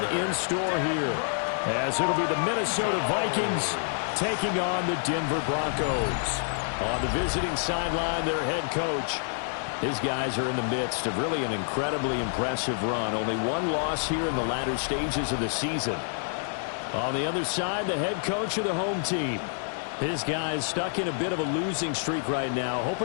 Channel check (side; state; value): right; silent; digital silence